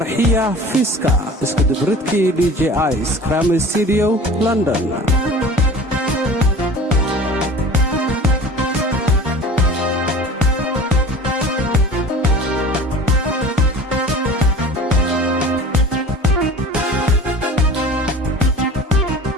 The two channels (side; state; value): both; normal; correlation 0.41